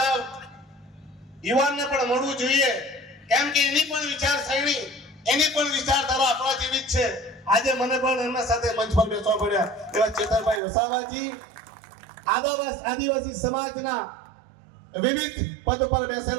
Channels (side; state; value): left; drops out; at 10.6 s